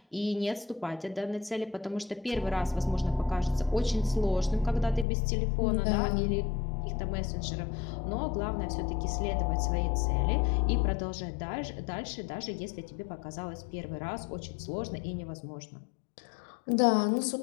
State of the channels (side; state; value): right; drops out; at 5.1 s